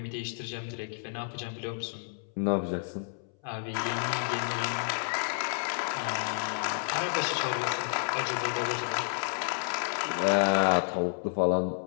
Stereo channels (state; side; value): silent; right; 57 dB below the other